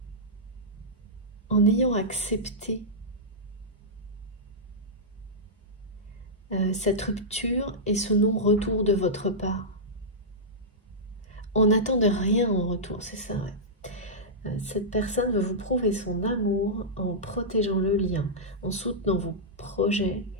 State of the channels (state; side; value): normal; both; correlation -0.11